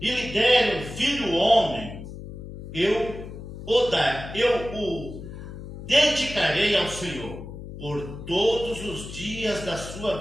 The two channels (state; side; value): noise; left; hum, 11 dB below the sound